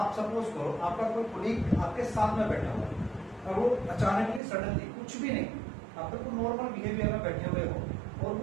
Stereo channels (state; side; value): drops out; left; at 4.4 s